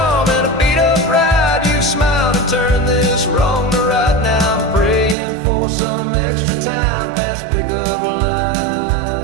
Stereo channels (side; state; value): left; drops out; at 5.2 s